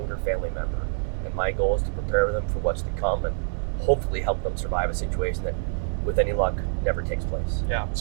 family member. And my goal is to prepare them for what's to come and hopefully help them survive a situation that, with any luck, never takes place. Yeah.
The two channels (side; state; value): left; silent; 56 dB below the other